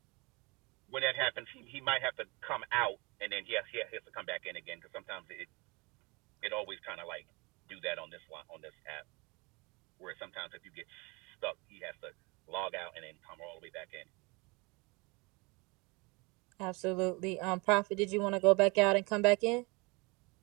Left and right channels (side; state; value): left; quieter; 27.4 dB